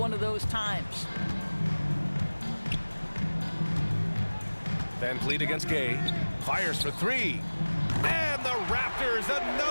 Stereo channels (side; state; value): both; inverted; correlation -1.00